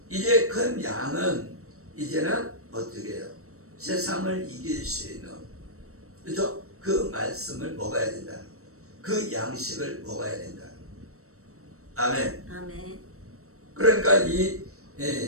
이제 큰 양은 이제는 어떻게 해요? 세상을 이길 수 있는, 그렇죠? 그 말씀을 먹어야 된다. 그 양식을 먹어야 된다. 아멘. 아멘. 그러니까 이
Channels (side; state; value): left; late; 0.64 ms